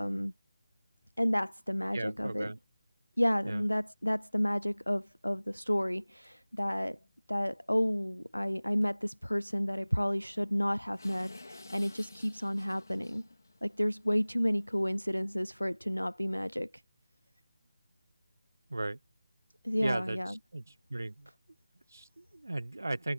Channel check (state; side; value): inverted; both; correlation -1.00